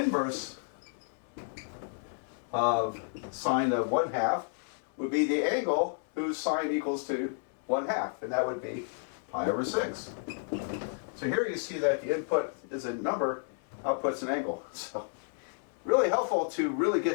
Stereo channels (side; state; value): right; silent; 57 dB below the other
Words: of sine of 1/2 would be the angle whose sine equals to 1/2, and that would be pi over 6. So here you see that the input is a number, output's an angle. So really helpful to really